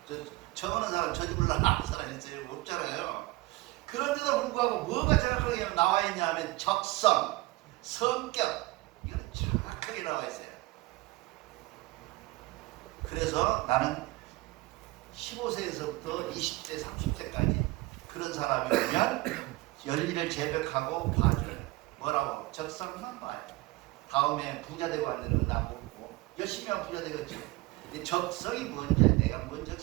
저거는 사람 저주불랄 아는 사람 있어요? 없잖아요. 그런데도 불구하고 뭐가 정확하게 나와 있냐 하면 적성, 성격, 이건 정확하게 나와 있어요. 그래서 나는 15세에서부터 20세, 30세까지 그런 사람이면 열일을 재벽하고 봐줘요. 뭐라고? 적성만 봐요. 다음에 부자 되고 안 되는 건 나쁘고 열심히 하면 부자 되겠지. 근데 적성이 뭔지, 내가 뭔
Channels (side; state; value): left; quieter; 20.1 dB